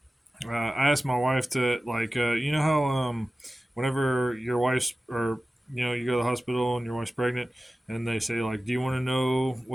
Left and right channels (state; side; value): normal; both; correlation 0.96